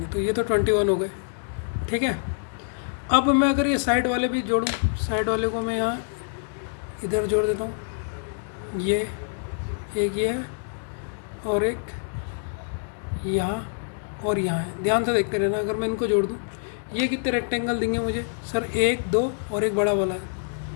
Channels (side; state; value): right; silent; digital silence